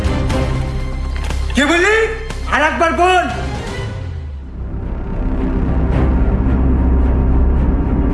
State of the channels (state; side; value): identical; both; correlation 1.00